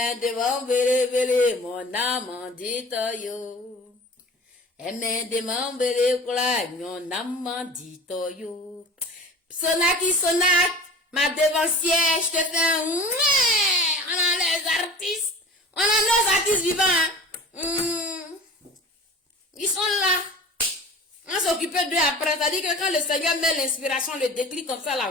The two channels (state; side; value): normal; both; correlation 0.39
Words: de mambele mon namandito yo, eme de mambele kwalanyo namandito yo. Sonaki Sonak, ma devancière, je te fais un mouais. On a les artistes. On a nos artistes vivants. Ils sont là. On s'occupe d'eux après. C'est-à-dire que quand le Seigneur met l'inspiration, le déclic comme ça